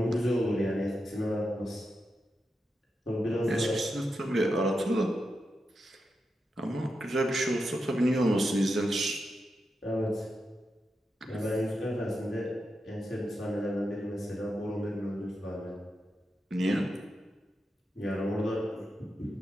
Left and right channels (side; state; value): both; normal; correlation 0.87